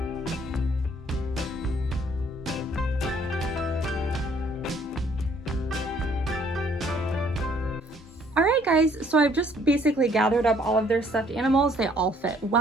All right, guys, so I've just basically gathered up all of their stuffed animals. They all fit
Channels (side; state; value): both; normal; correlation 0.62